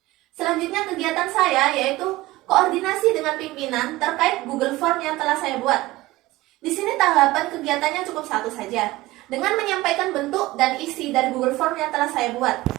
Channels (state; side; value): quieter; left; 18.6 dB